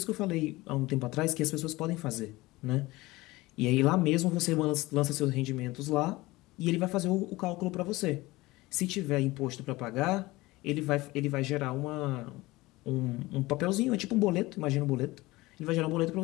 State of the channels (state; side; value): quieter; right; 20.2 dB